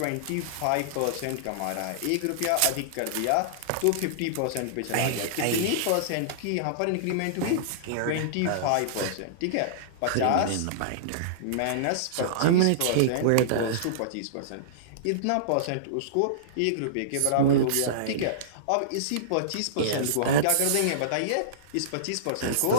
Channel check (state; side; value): different; both; correlation -0.03